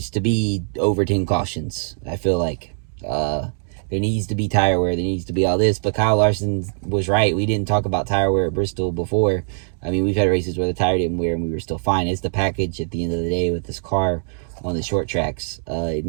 to be over 10 cautions, I feel like. There needs to be tire wear. There needs to be all this. But Kyle Larson was right. We didn't talk about tire wear at Bristol before. I mean, we've had races where the tire didn't wear and we were still fine. It's the package at the end of the day with this car on the short tracks. It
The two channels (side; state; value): left; silent; digital silence